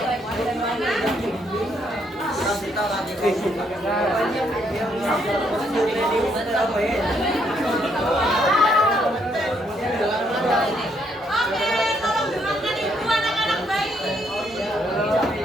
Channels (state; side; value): normal; both; correlation 0.72